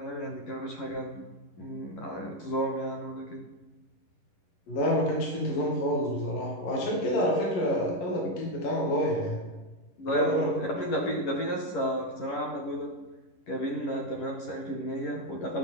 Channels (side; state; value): right; late; 11 ms